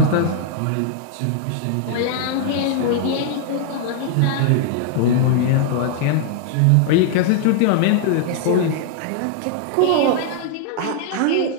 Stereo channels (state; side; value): different; both; correlation 0.00